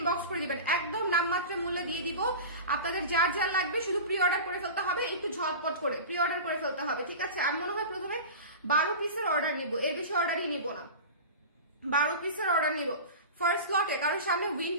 করে দিবেন, একদম নামমাত্র মূল্যে দিয়ে দিব। আপনাদের যার যার লাগবে শুধু প্রি অর্ডার করে ফেলতে হবে, একটু ঝটপট করে প্রি অর্ডার করে ফেলতে হবে, ঠিক আছে? আমি মনে হয় প্রথমে 12 পিসের অর্ডার নিব, এর বেশি অর্ডারই নিব না, 12 পিসের অর্ডার নিব ফার্স্ট লটে, কারণ সামনে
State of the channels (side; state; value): both; inverted; correlation -0.31